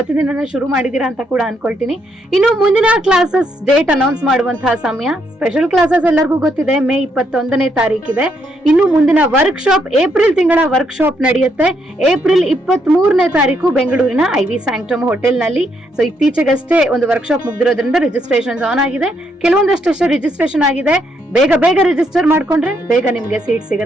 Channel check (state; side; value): normal; both; correlation 0.75